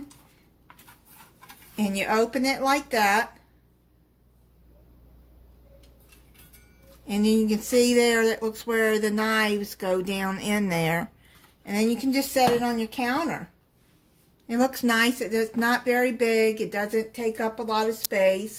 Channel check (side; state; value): both; identical; correlation 1.00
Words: and you open it like that, and then you can see there that looks where the knives go down in there, and then you can just set it on your counter. It looks nice. It's not very big. It doesn't take up a lot of